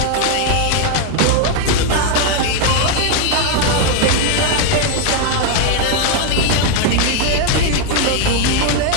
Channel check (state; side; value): different; both; correlation 0.00